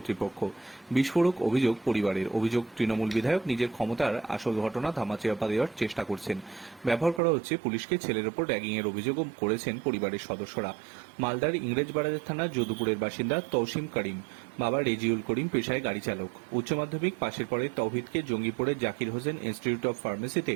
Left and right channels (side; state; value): left; drops out; at 7.2 s